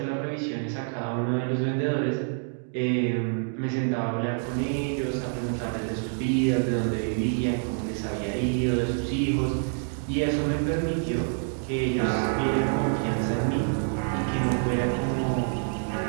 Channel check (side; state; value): left; silent; 60 dB below the other